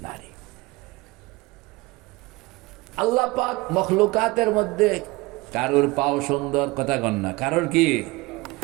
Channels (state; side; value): quieter; left; 22.7 dB